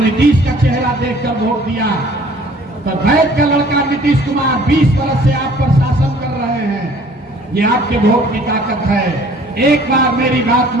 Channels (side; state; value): both; normal; correlation 0.54